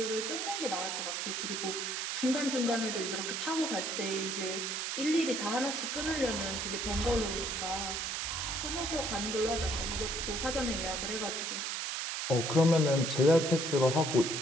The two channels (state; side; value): noise; right; hiss, 2 dB below the sound